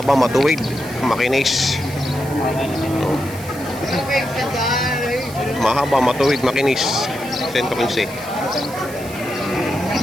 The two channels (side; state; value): right; noise; hiss, 16 dB below the sound